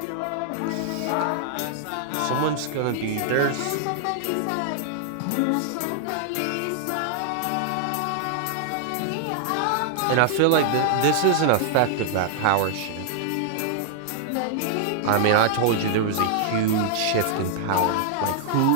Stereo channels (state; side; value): different; both; correlation -0.01